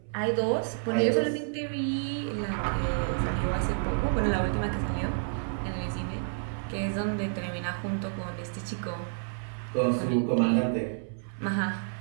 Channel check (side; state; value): left; silent; 58 dB below the other